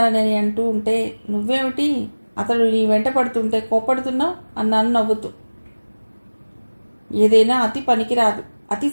అంటూ ఉంటే నువ్వేమిటి అతడు నీ వెంట పడుతుంటే కోపడుతున్నావు అన్నాను నవ్వుతూ. ఏదైనా అతి పనికిరాదు, అతి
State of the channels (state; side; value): inverted; both; correlation -1.00